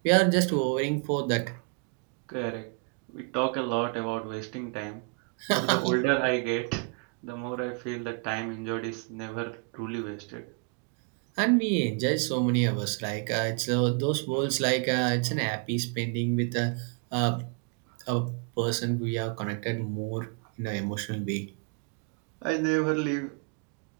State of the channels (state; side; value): quieter; left; 35.9 dB